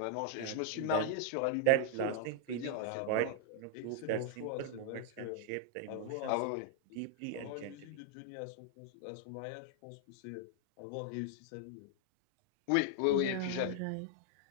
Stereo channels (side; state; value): both; different; correlation 0.00